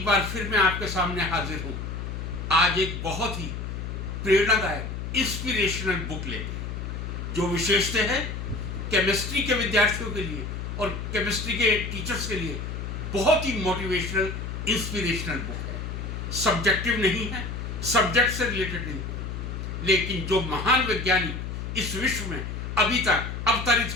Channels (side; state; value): left; noise; hum, 6 dB below the sound